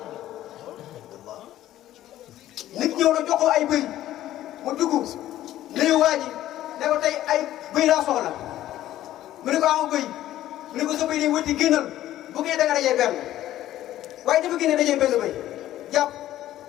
nit ñëw na jox ko ay bëy mu dugg nuyu waa ji ne ko tey ay bëy laa soxla mu ne ko am bëy mu ne ko sa bëy day wëtti génnal bu ngeen da nga dajee benn waaye dafa génne dajee benn bëy jàpp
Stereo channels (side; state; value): right; quieter; 13.6 dB